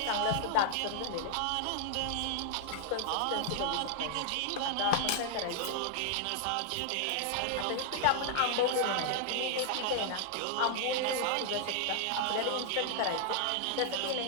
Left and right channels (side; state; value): both; different; correlation 0.00